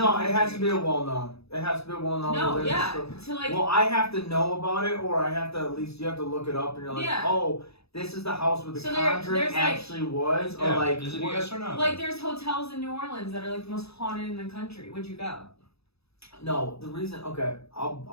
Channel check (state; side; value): late; right; 0.78 ms